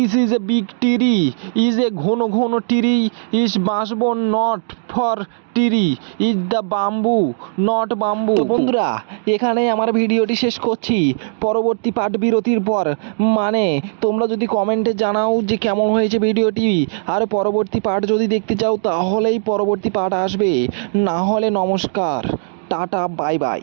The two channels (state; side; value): silent; left; digital silence